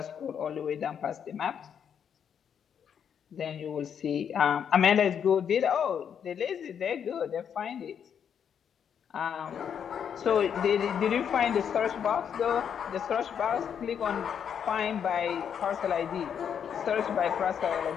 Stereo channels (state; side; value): quieter; right; 8.0 dB